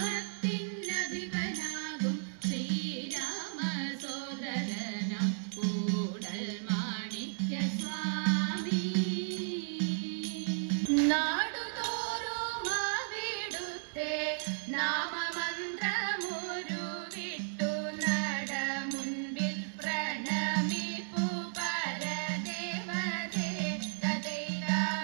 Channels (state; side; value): silent; left; digital silence